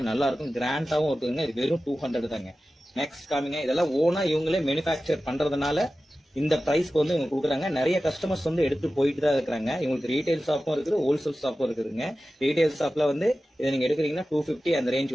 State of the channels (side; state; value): both; normal; correlation 0.95